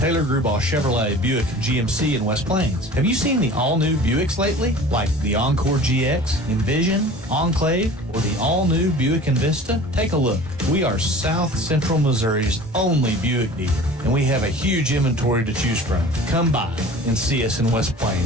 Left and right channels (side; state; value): both; normal; correlation 0.42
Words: Grubauer Chevrolet Buick GMC in West Plains. Have you seen the all-new Buicks lately? Like the Encore GX, Envision, Enclave, or the all-new Buick Envista? Take a look. We are South Central Missouri's only Buick dealer, and we have a huge inventory to choose from. Come by and see us in West